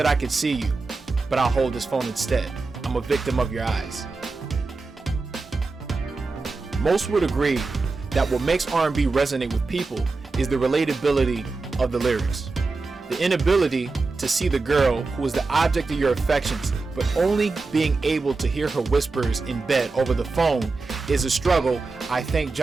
I could see you, but I'll hold this phone instead. I'm a victim of your eyes. Most would agree that what makes R&B resonate with people is the relatability of the lyrics. The inability to see the girl who is the object of your affections, but only being able to hear her whispers in bed over the phone is a struggle I thank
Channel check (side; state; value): left; quieter; 3.9 dB